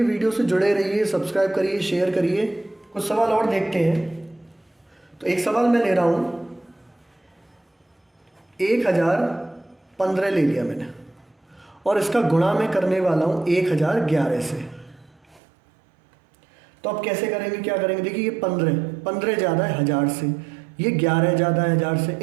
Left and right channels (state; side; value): drops out; left; at 15.4 s